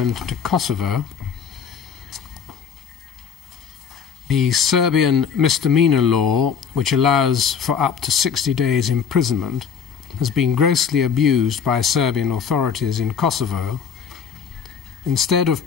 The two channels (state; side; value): quieter; right; 6.9 dB